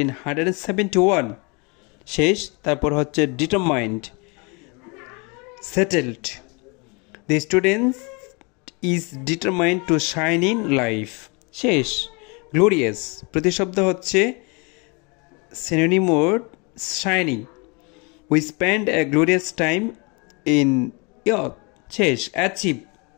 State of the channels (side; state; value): right; quieter; 30.8 dB